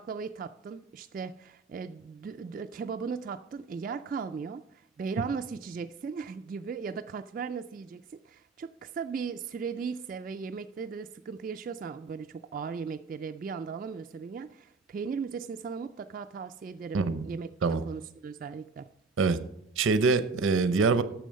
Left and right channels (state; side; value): quieter; left; 4.3 dB